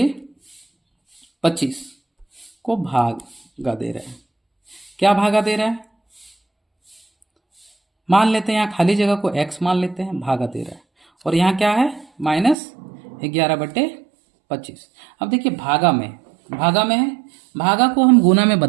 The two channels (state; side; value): drops out; left; at 12.6 s